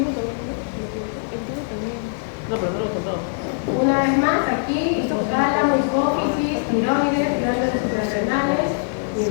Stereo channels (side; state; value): right; silent; digital silence